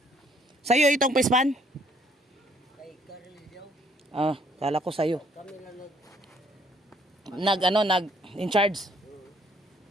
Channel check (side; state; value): both; normal; correlation 0.64